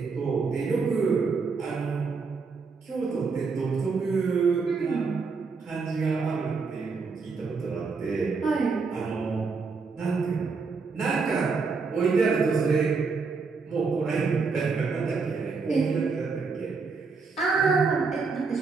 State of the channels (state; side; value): quieter; left; 4.8 dB